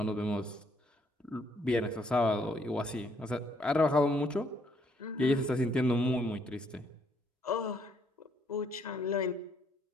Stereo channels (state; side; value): normal; both; correlation 0.69